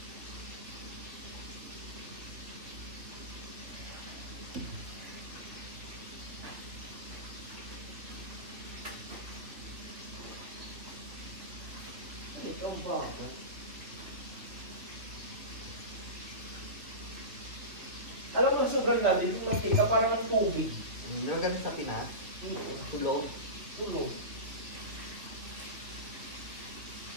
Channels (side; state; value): left; late; 2.9 ms